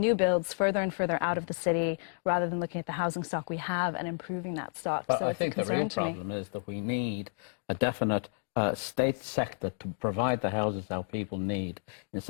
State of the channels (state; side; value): silent; right; digital silence